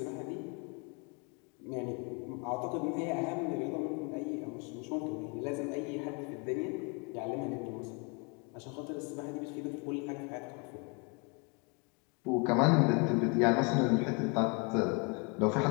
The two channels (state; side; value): quieter; right; 31.9 dB